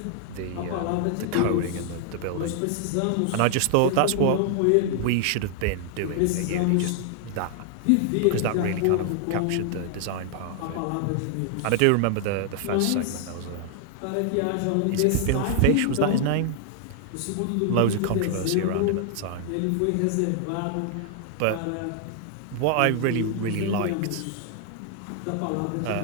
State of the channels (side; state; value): both; different; correlation 0.00